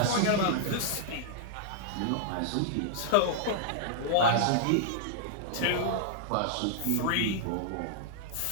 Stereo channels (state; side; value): different; both; correlation -0.01